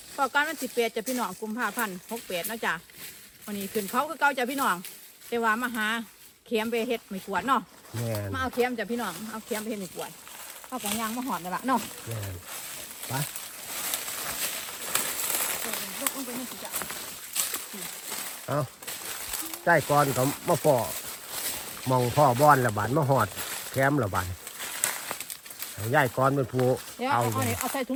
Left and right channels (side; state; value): both; identical; correlation 1.00